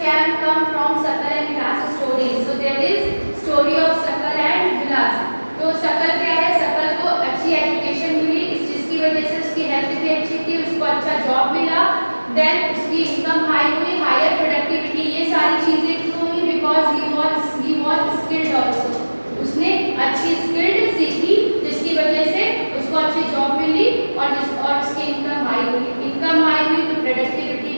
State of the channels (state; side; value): inverted; both; correlation -1.00